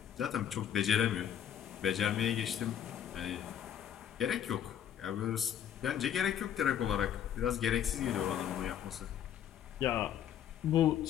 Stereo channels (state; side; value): quieter; right; 9.7 dB